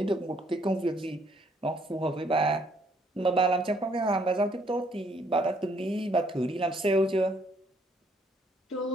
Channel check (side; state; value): both; normal; correlation 0.67